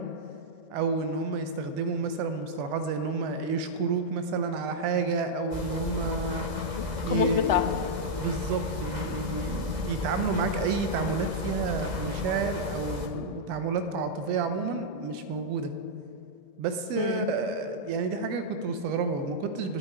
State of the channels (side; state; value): left; late; 2.0 ms